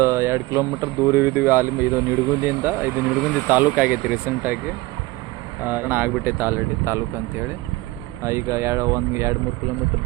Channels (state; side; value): quieter; left; 20.6 dB